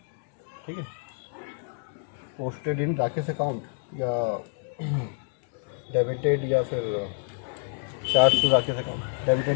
ठीक है, पोस्टेड इन राकेश अकाउंट या डेबिटेड या फिर charge to Rakesh account.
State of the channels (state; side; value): silent; right; 59 dB below the other